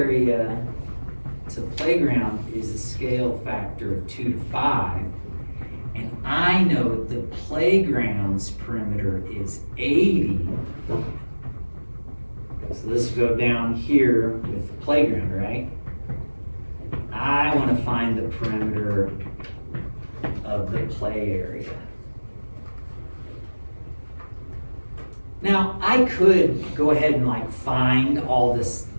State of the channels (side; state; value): both; inverted; correlation -1.00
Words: to playground is a scale factor of 2 to 5. And I know the playground's perimeter is 80. So this will go down here with the playground, right? I want to find the perimeter of the play area. Now, I could go ahead and like find all this,